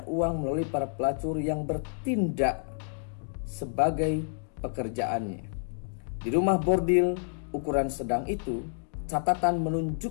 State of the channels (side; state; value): right; silent; digital silence